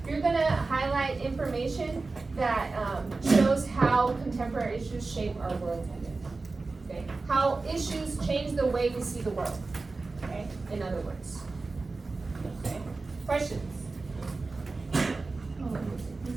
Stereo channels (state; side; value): quieter; left; 3.7 dB